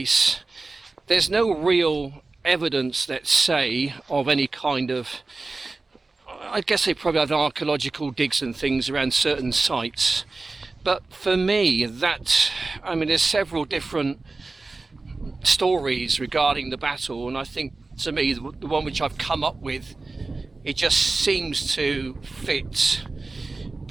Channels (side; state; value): left; quieter; 3.6 dB